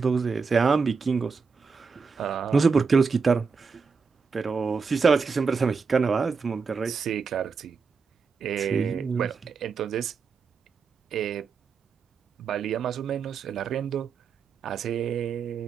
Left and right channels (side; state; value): left; quieter; 5.2 dB